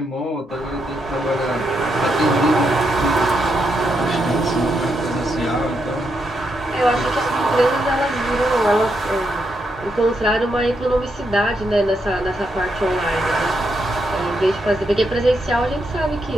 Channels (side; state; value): both; normal; correlation 0.81